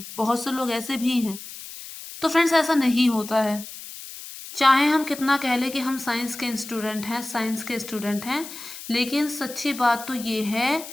बहुत से लोग ऐसे भी हैं। तो फ्रेंड्स, ऐसा नहीं होता है। चाहे हम कितना कह लें कि हम साइंस के स्टूडेंट हैं, लेकिन सच्ची बात तो ये है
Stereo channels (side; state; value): left; noise; hiss, 13 dB below the sound